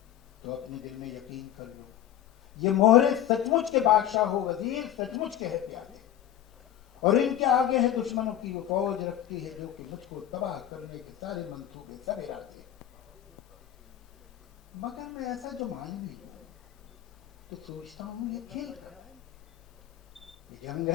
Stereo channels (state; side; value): quieter; right; 11.4 dB